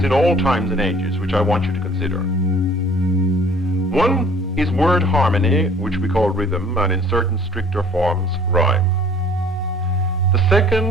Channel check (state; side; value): normal; both; correlation 0.54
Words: in all times and ages, which I want you to consider. One is word harmony, which we call rhythm, and in certain stricter forms, rhyme. The